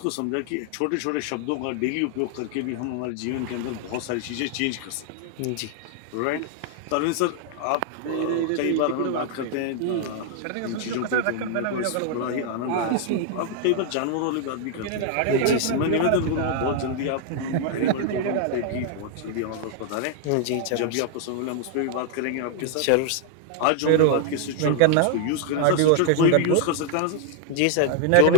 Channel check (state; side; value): different; both; correlation 0.00